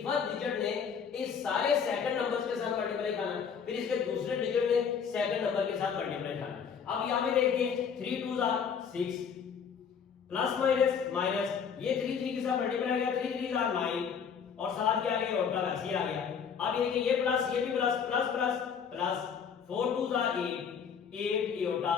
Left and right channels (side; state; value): right; quieter; 6.9 dB